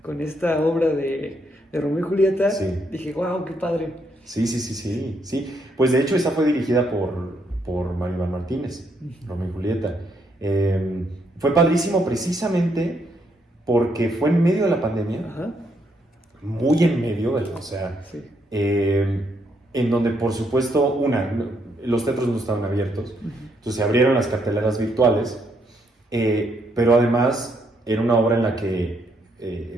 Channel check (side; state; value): both; normal; correlation 0.74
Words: esta obra de Romeo y Julieta, Sí. dije, wow, qué padre. Sí. Pues de hecho esa fue dirigida por Mario Iván Martínez, Romeo y Julieta. Fue padrísimo precisamente porque fue en medio de la pandemia, Ajá, muy en medio, o sea, sí. en donde por supuesto, los teatros no estaban abiertos, entonces se abrieron las carteleras virtuales, pero además era una obra en la que,